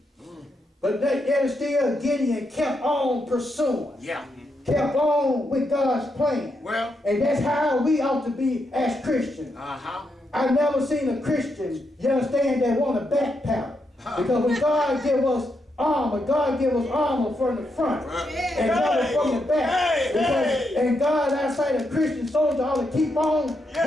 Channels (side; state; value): both; normal; correlation 0.82